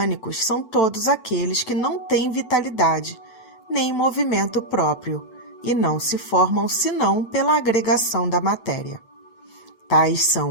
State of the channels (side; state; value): right; late; 8.0 ms